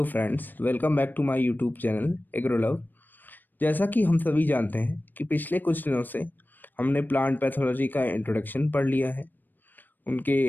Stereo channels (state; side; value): late; right; 0.090 ms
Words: friends, welcome back to my YouTube channel Agrolove. जैसा कि हम सभी जानते हैं कि पिछले कुछ दिनों से हमने प्लांट पैथोलॉजी का इंट्रोडक्शन पढ़ लिया है, उनके